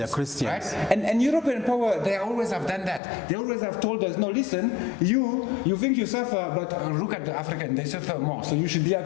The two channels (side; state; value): right; drops out; at 3.0 s